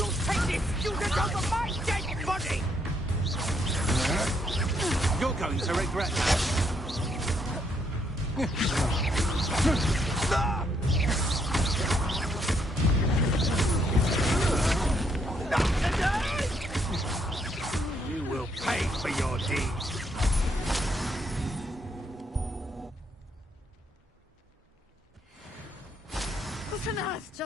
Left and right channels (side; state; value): both; normal; correlation 0.73